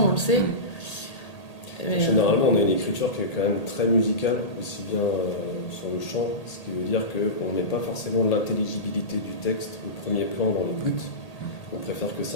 on le sait. Mais généralement on a une écriture qui est quand même très musicale, aussi bien sur le chant, ce qui veut dire qu'on ne met pas forcément l'intelligibilité du texte au premier plan dans l'écoute. On préfère que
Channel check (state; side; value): late; right; 1.8 ms